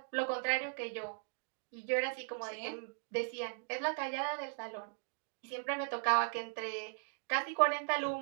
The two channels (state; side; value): silent; left; digital silence